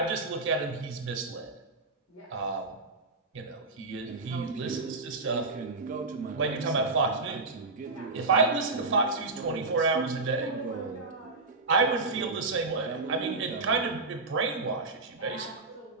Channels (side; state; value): left; quieter; 3.5 dB